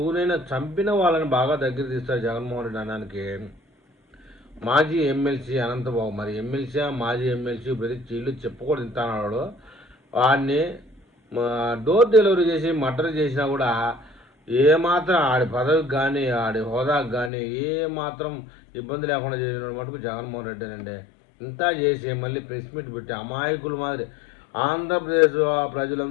చంపిన వాళ్ళని బాగా దగ్గర తీస్తారు జగన్మోహన్ రెడ్డి అనడానికి మాజీ ఎమ్మెల్సీ అనంతబాబు. మరి ఎమ్మెల్సీ మాజీ ఎమ్మెల్సీ ప్రతి చీళ్ళు చెప్పుకూడదు తింటాడు. వాడిని డోర్ డెలివరీ చేసి మర్డర్ చేసినా కూడా ఏమాత్రం ఆడి పదవికి కానీ ఆడి హోదాకు కానీ ఏమాత్రం ఇబ్బంది లేకుండా చేసిన మటుకు జగన్మోహన్ రెడ్డి అండి. ఇంత చేసి మళ్ళీ ప్రెస్ మీట్ పెట్టి అమాయకుల మాదిరి ఆంధ్రప్రదేశ్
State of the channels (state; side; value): drops out; right; at 17.3 s